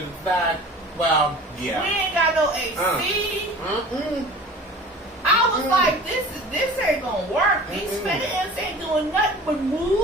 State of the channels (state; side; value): normal; both; correlation 0.41